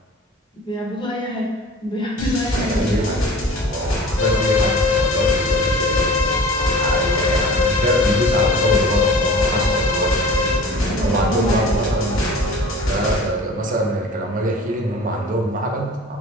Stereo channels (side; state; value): both; normal; correlation 0.42